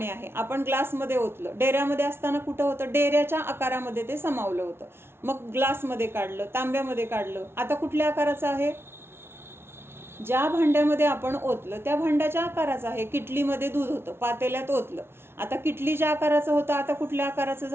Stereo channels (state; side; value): late; left; 0.12 ms